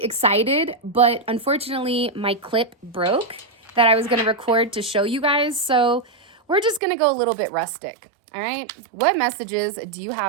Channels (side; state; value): left; drops out; at 6.8 s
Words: excited, but unfortunately my clip broke that I was going to record to show you guys. So we're just going to go a little bit rustic. All right. What messages do you